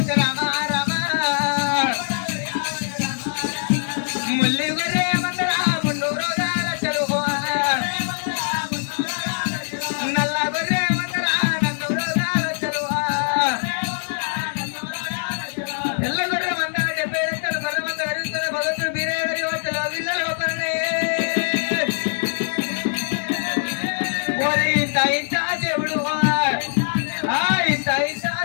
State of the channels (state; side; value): silent; right; digital silence